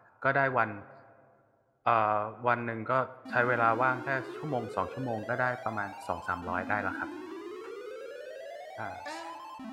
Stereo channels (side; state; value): both; identical; correlation 1.00